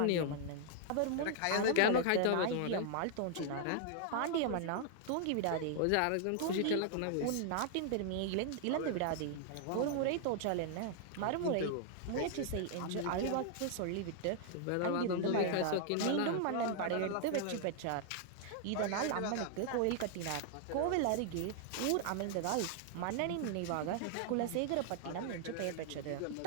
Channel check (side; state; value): both; different; correlation 0.00